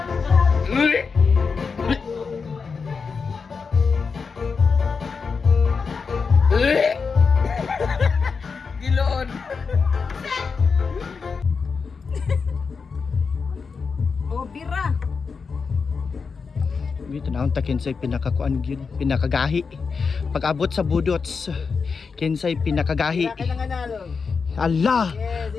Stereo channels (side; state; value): right; quieter; 5.2 dB